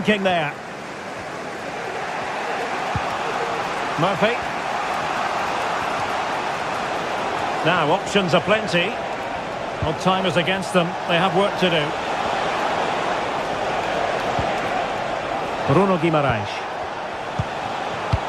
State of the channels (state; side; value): identical; both; correlation 1.00